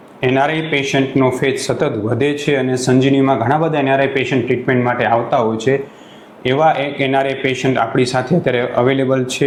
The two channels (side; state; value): both; identical; correlation 1.00